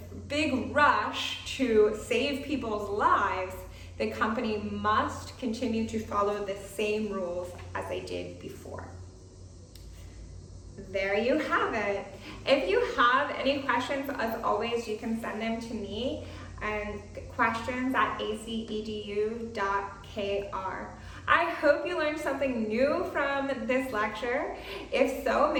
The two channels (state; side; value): identical; both; correlation 1.00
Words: big rush to save people's lives, the company must continue to follow the same rules as they did before. There you have it. If you have any questions, as always, you can send them to me and questions@acedu.kr. I hope you learned something new from this lecture. If so,